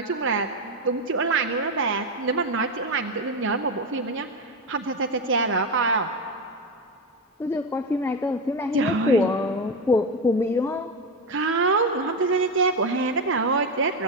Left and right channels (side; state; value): both; normal; correlation 0.13